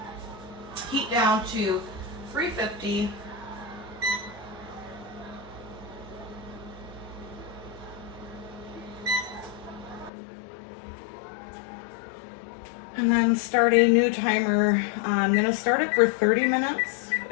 heat down to 350. And then start a new timer. I'm gonna start it for 30 minutes.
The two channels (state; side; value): drops out; right; at 10.1 s